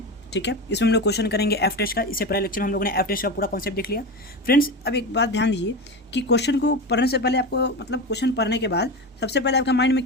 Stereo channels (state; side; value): normal; both; correlation 0.22